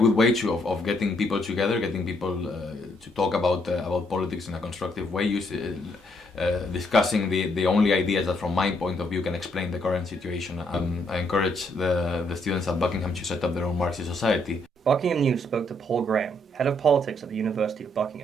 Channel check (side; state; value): both; normal; correlation 0.72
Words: way of getting people together, getting people to talk about politics in a constructive way, discussing the only ideas that from my point of view can explain the current situation. I encourage the students at Buckingham to set up their own Marxist society. Buckingham News spoke to Paul Graham, head of politics at the University of